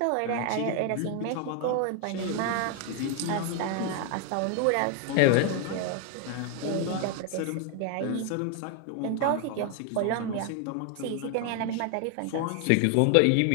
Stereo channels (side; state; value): both; different; correlation 0.01